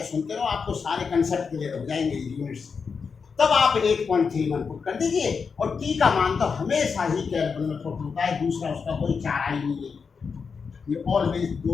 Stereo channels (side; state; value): right; quieter; 5.5 dB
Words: सुनते रहो, आपको सारे कंसेप्ट क्लियर हो जाएंगे यूनिट्स। तब आप 8.31 पुट कर दीजिए, और टी का मान तो हमेशा ही केल्विन में पुट होता है, दूसरा उसका कोई चारा ही नहीं है, ये ऑलवेज